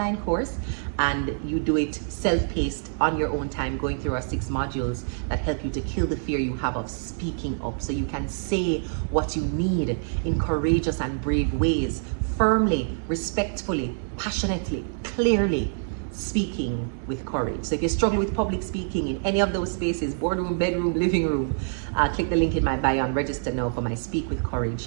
course, and you do it self-paced on your own time, going through our 6 modules that help you to kill the fear you have of speaking up, so you can say what you need in courageous and brave ways, firmly, respectfully, passionately, clearly, speaking with courage. So if you struggle with public speaking in any of those spaces, boardroom, bedroom, living room, click the link in my bio and register now for my Speak with Courage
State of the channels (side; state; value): left; silent; digital silence